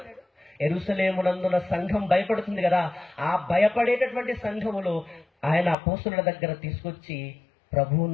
యెరూషలేమునందున సంఘం భయపడుతుంది కదా, ఆ భయపడేటటువంటి సంఘములో ఆయన అపోస్తలుల దగ్గర తీసుకొచ్చి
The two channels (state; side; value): drops out; right; at 5.8 s